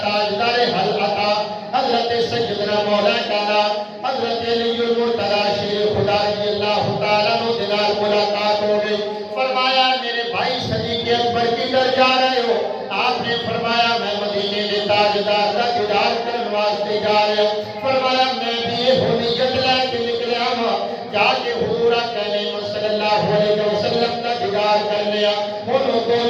تاجدار حلقہ حضرت سیدنا مولا کانا حضرت علی المرتضی شیر خدا رضی اللہ تعالیٰ عنہ دلال ملاقات ہو گئی۔ فرمایا میرے بھائی صدیق اکبر کی در جا رہے ہو؟ آپ نے فرمایا میں مدینے دے تاجدار کا دیدار کرنے واسطے جا رہے ہوں۔ فرمایا میں بھی یہ نیت لے کے نکلیا ہوں جا کے حضور کہنے صلی اللہ علیہ وسلم کا دیدار کرنے ہوں۔ انہوں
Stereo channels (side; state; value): both; identical; correlation 1.00